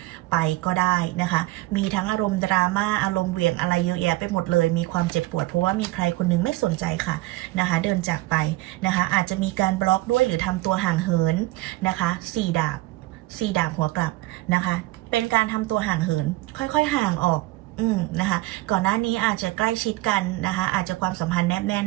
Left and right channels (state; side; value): quieter; left; 19.0 dB